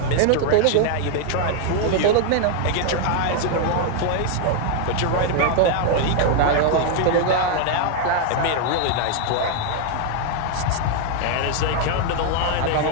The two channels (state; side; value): different; both; correlation 0.00